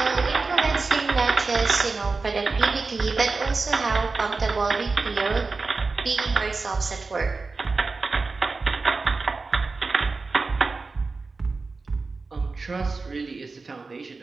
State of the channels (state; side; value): quieter; left; 4.0 dB